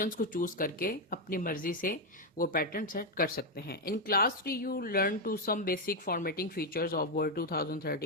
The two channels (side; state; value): both; normal; correlation 0.04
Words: को चूज करके अपनी मर्जी से वो पैटर्न सेट कर सकते हैं। In class 3 you learn to some basic formatting features of Word